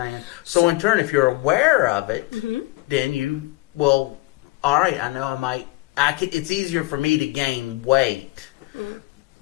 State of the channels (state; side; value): quieter; right; 20.9 dB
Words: So in turn, if you're aware of it, then you will. All right, I know I might. It's easier for me to gain weight.